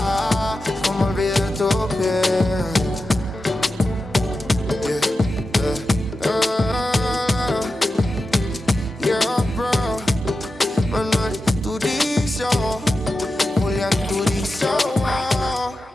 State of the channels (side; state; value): both; normal; correlation 0.91